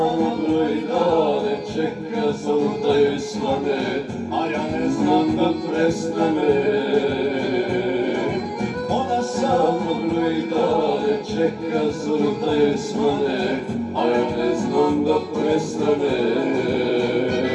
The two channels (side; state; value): both; identical; correlation 1.00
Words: broji dane, čeka samo da joj svane, a ja ne znam da prestane. Ona samo broji dane, čeka samo da joj svane, a ja ne znam da prestane.